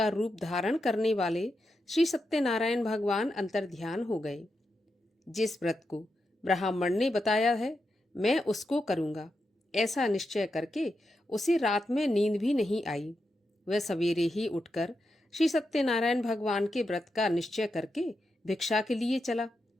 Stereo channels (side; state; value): both; normal; correlation 0.86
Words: रूप धारण करने वाले श्री सत्यनारायण भगवान अंतर्ध्यान हो गए। जिस व्रत को ब्राह्मण ने बताया है, मैं उसको करूँगा, ऐसा निश्चय करके उसे रात में नींद भी नहीं आई। वह सवेरे ही उठकर श्री सत्यनारायण भगवान के व्रत का निश्चय करके भिक्षा के लिए चला।